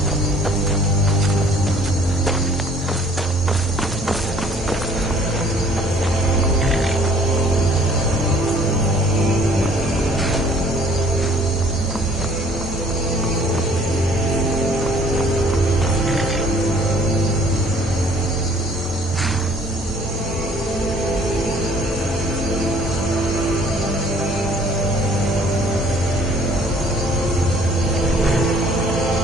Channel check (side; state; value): both; normal; correlation 0.57